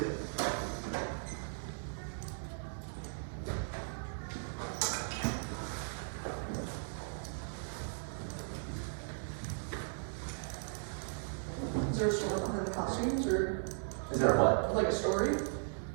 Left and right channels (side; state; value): left; silent; digital silence